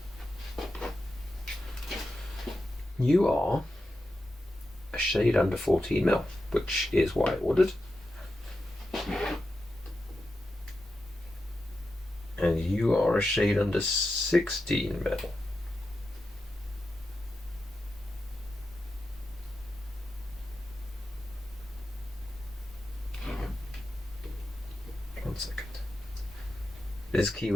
You are a shade under 14 mil, which is what I ordered. And you are a shade under 16 mil. One second. This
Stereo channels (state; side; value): normal; both; correlation 0.90